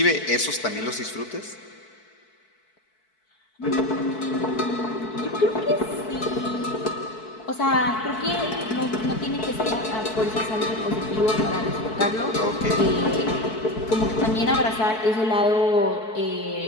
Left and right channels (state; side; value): late; right; 4.6 ms